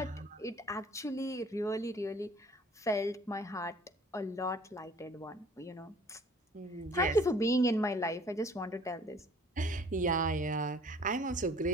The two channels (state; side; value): normal; both; correlation 0.53